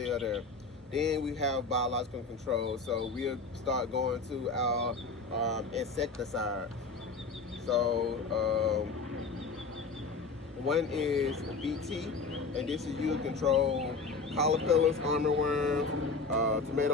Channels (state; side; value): quieter; right; 4.2 dB